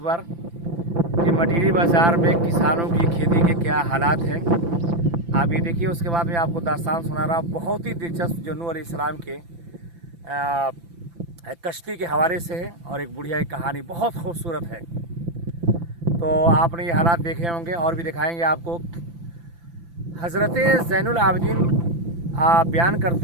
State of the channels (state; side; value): late; left; 5.9 ms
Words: बार कि मटीरी बाज़ार में किसानों की खेती के क्या हालात हैं। आप ये देखिए, उसके बाद मैं आपको दास्तान सुना रहा हूँ बहुत ही दिलचस्प जो नूह अलैहिस्सलाम के कश्ती के हवाले से है, और एक बुढ़िया की कहानी बहुत खूबसूरत है। तो आपने ये हालात देखे होंगे और भी दिखाएंगे आपको। हज़रत ज़ैनुल आबिदीन बयान